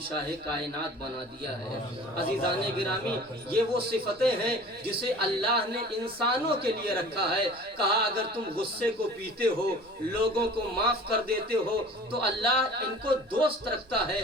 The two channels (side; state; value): right; noise; rumble, 29 dB below the sound